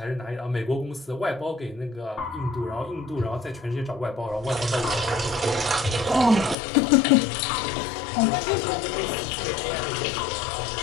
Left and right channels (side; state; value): right; drops out; at 6.6 s